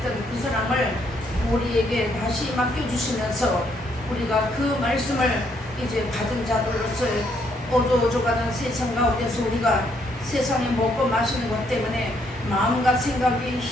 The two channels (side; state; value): both; normal; correlation 0.71